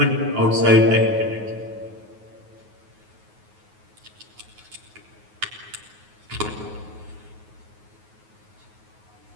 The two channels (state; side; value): late; left; 9.4 ms